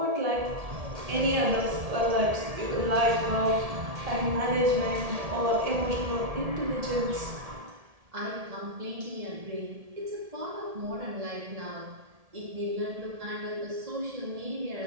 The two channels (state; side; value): late; left; 1.7 ms